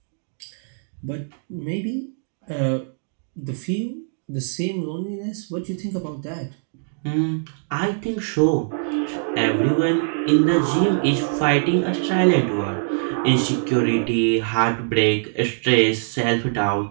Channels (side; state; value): left; silent; digital silence